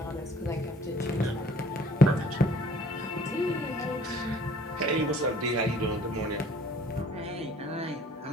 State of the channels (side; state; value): both; normal; correlation 0.53